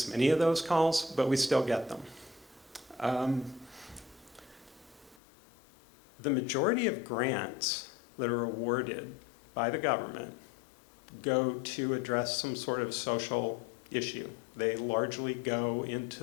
many of those calls, but we still get them. The majority of grants that are awarded by the government go to address some sort of social issue. They largely go into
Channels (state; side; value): drops out; right; at 5.2 s